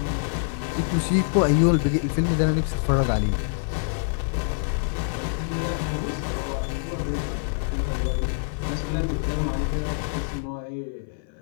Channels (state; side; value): silent; right; 56 dB below the other